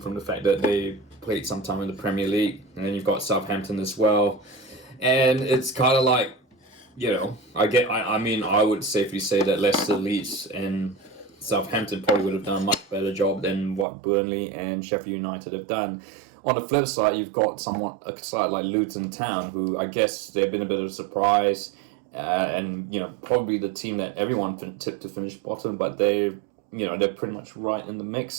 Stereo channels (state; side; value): drops out; left; at 13.9 s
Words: the fact that they played some time in the Premier League, and then you've got Southampton as well, and it's kind of like, I would safely say that Leicester, Leeds, and Southampton probably would have done a much better job than what Burnley and Sheffield United have done. On the flip side, you've got a side like Luton Town, who I guess they've been a bit of a surprise, and probably the team that everyone tipped to finish bottom, but they're pretty much right in the